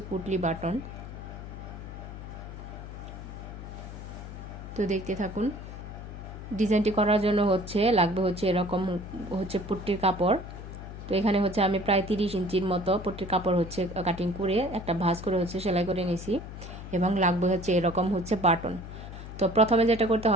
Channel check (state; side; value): noise; left; hum, 11 dB below the sound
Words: পুটলি বাটন। তো দেখতে থাকুন। ডিজাইনটি করার জন্য লাগবে হচ্ছে এরকম হচ্ছে পুটলির কাপড়। তো এখানে হচ্ছে আমি প্রায় 30 ইঞ্চির মতো পুটলির কাপড় হচ্ছে কাটিং করে একটা ভাঁজ করে হচ্ছে সেলাই করে নিয়েছি, এবং লাগবে হচ্ছে এরকম হচ্ছে বাটন। তো প্রথমে যেটা করতে